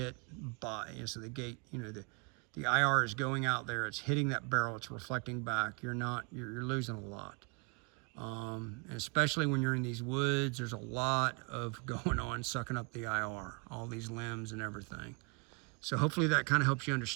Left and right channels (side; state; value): left; quieter; 33.5 dB